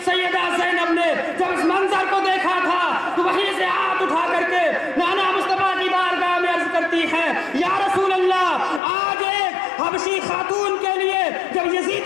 सैयदा ज़ैनब ने जब इस मंजर को देखा था तो वहीं से हाथ उठा करके नाना मुस्तफा की बारगाह में अर्ज करती है, या रसूल अल्लाह, आज एक हबशी खातून के लिए जब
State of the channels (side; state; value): right; drops out; at 8.8 s